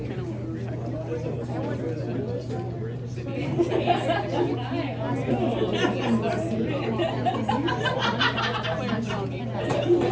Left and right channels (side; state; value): both; identical; correlation 1.00